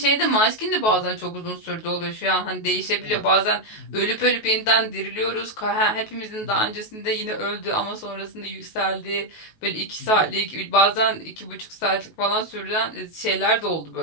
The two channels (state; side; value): late; right; 19 ms